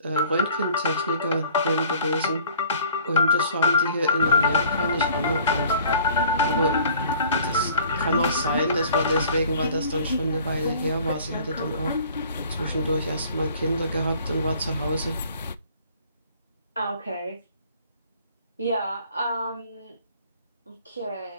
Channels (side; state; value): both; inverted; correlation -0.52